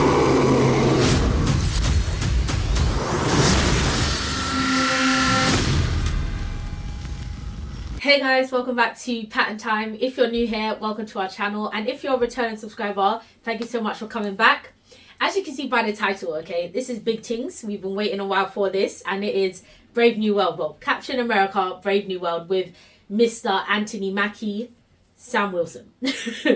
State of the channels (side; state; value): both; identical; correlation 1.00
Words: Hey guys, welcome back to Patten Time. If you're new here, welcome to our channel, and if you're a returning subscriber, thank you so much for coming back. As you can see by the title, okay, this is big things. We've been waiting a while for this, and it is Brave New World. Well, Captain America, Brave New World with Mr. Anthony Mackie, Sam Wilson.